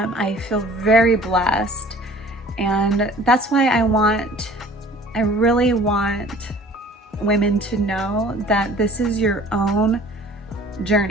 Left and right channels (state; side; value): normal; both; correlation 0.49